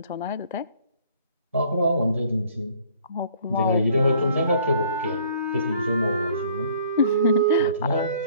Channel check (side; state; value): both; inverted; correlation -0.57